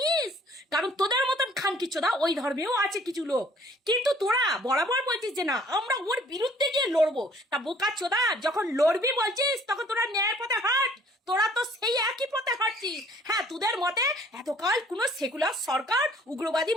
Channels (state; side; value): normal; both; correlation 0.57